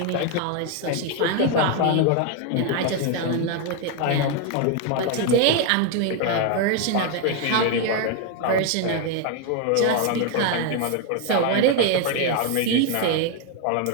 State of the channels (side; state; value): both; different; correlation 0.01